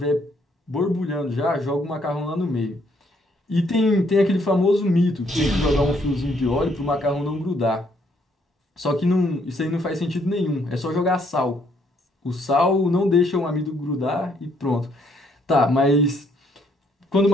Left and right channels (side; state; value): both; normal; correlation 0.69